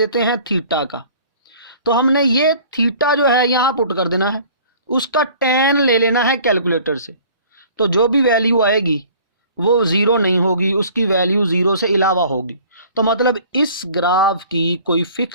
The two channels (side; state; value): both; inverted; correlation -0.50